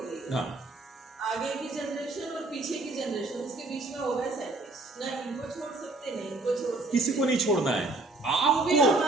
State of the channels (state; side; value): quieter; left; 3.1 dB